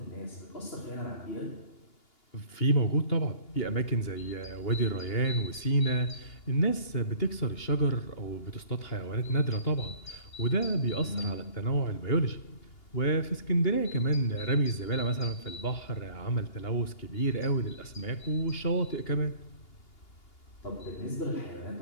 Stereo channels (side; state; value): right; late; 2.8 ms